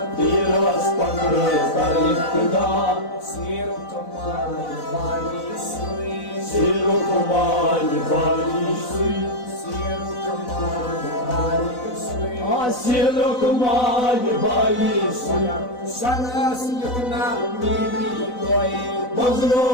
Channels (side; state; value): right; late; 4.0 ms